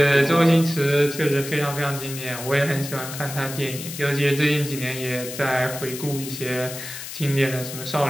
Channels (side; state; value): left; noise; hiss, 10 dB below the sound